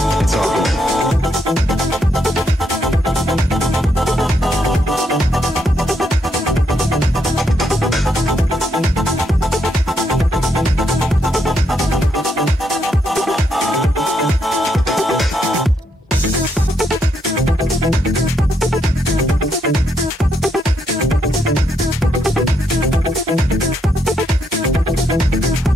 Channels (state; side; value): normal; both; correlation 0.77